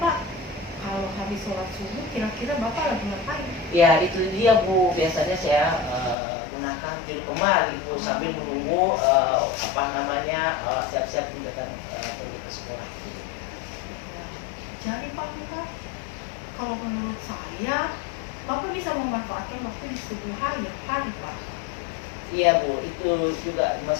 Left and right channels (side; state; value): right; drops out; at 6.2 s